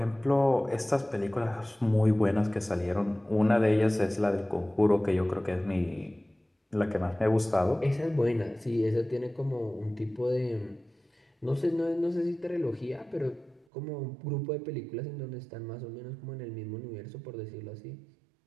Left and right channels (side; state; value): left; drops out; at 13.7 s